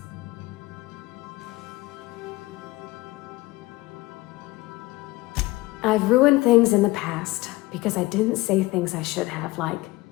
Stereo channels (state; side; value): quieter; right; 20.1 dB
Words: I've ruined things in the past because I didn't say things I should have, like,